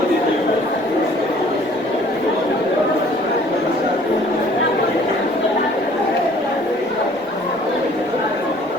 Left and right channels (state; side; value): normal; both; correlation 0.55